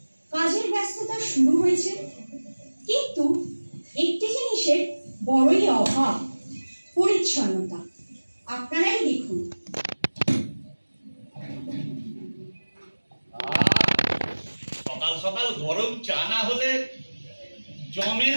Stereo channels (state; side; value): inverted; both; correlation -1.00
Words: কাজের ব্যস্ততা শুরু হয়েছে, কিন্তু একটি জিনিসের বড়ই অভাব, পরিচ্ছন্নতা। আপনারাই দেখুন। সকাল সকাল গরম চা না হলে জমে